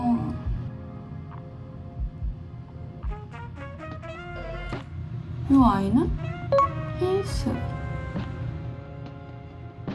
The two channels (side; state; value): both; identical; correlation 1.00